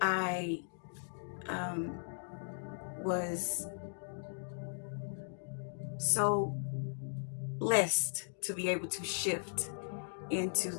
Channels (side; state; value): right; silent; digital silence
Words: I was so blessed to be able to shift into